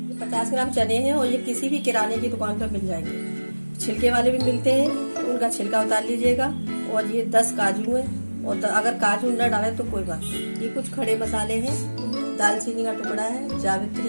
50 ग्राम चने हैं और ये किसी भी किराने की दुकान पर मिल जाएंगे। छिलके वाले भी मिलते हैं, उनका छिलका उतार लीजिएगा। और ये 10 काजू है और अगर काजू न डालें तो कोई बात नहीं। ये कुछ खड़े मसाले हैं, दालचीनी का टुकड़ा है,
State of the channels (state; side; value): inverted; both; correlation -1.00